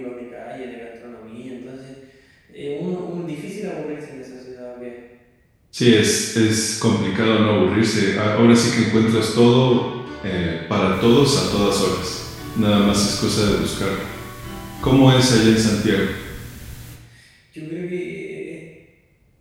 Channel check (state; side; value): identical; both; correlation 1.00